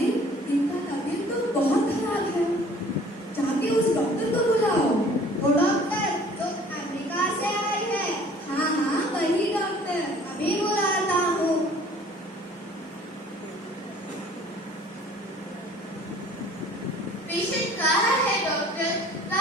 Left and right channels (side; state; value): both; normal; correlation 0.52